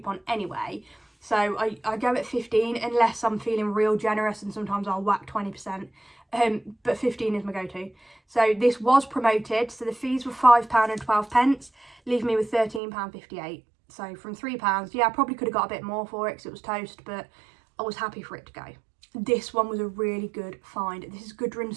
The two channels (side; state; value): left; drops out; at 12.8 s